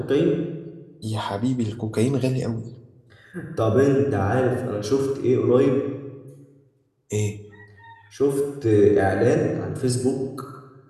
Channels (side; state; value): both; identical; correlation 1.00